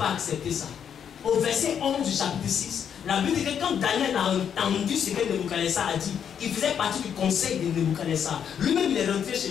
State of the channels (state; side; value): quieter; right; 8.2 dB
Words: accepter ça. Au verset 11 du chapitre 6, la Bible dit que quand Daniel a entendu ce que Nebuchadnezzar a dit, il faisait partie du conseil de Nebuchadnezzar. Lui-même, il est rentré chez